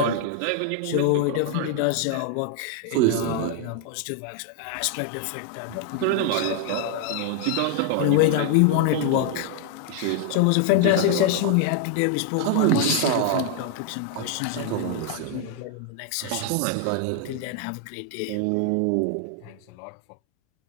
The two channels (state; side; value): different; both; correlation 0.00